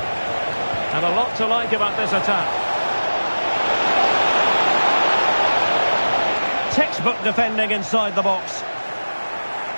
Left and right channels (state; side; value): inverted; both; correlation -1.00